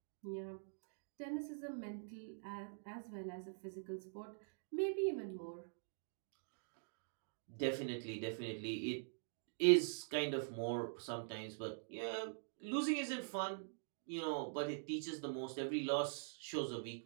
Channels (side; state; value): left; silent; digital silence